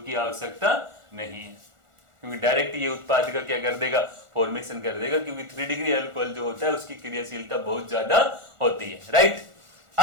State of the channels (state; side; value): late; left; 1.4 ms